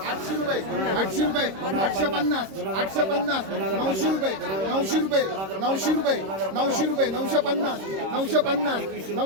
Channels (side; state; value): left; late; 26 ms